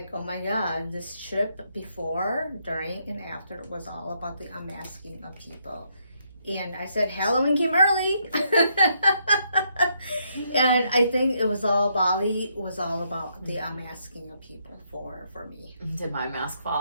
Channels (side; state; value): both; inverted; correlation -0.75